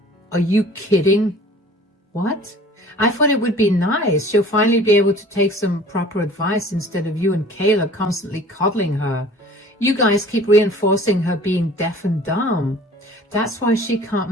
Are you kidding? What? I thought it would be nice. She'll finally be able to take some proper advice instead of you and Kayla constantly coddling her. You guys keep reinforcing her being deaf and dumb. That's why she can't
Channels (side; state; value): both; normal; correlation 0.47